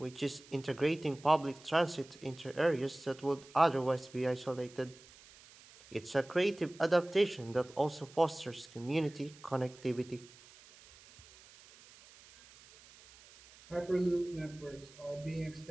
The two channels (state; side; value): noise; right; hiss, 22 dB below the sound